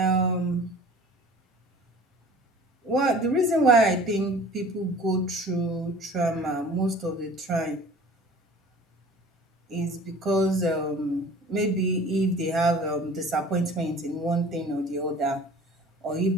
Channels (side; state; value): both; normal; correlation 0.45